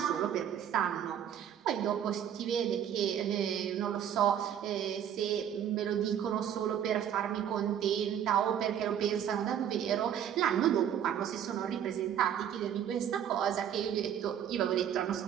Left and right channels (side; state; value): left; quieter; 9.5 dB